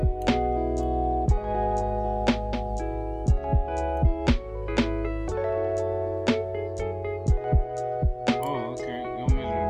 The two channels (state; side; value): identical; both; correlation 1.00